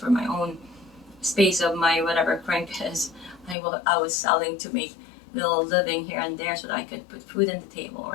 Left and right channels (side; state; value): right; drops out; at 3.6 s